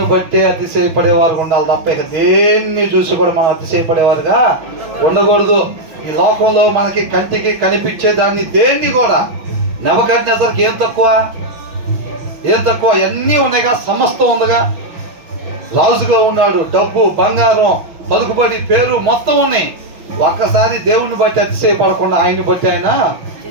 బట్టే అతిశయపడేవారు ఉండాలి తప్ప ఇక దేన్ని చూసి కూడా మనం అతిశయపడేవారుగా ఉండకూడదు. ఈ లోకంలో మనకి కంటికి కనిపించే దాన్ని దేన్ని కూడా, నెబుకద్నెజరుకి ఏం తక్కువ? అన్నీ ఉన్నాయిగా, సమస్తం ఉందిగా. రాజుగా ఉన్నాడు, డబ్బు, బంగారం, పలుకుబడి, పేరు మొత్తం ఉన్నాయి. ఒక్కసారి దేవుణ్ణి బట్టి అతిశయపడకుండా ఆయన్ని బట్టి ఆయన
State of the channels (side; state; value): left; late; 5.9 ms